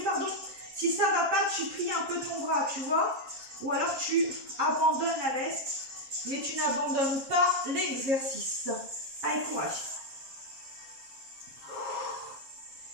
pardon. Si ça va pas, tu plies un peu ton bras, tu vois, ou alors tu abandonnes à l'est, mais tu n'abandonnes pas l'exercice. Allez, courage.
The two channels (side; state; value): left; late; 7.4 ms